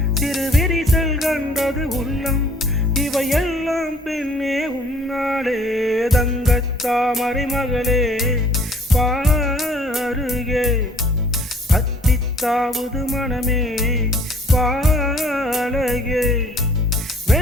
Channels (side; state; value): both; normal; correlation 0.56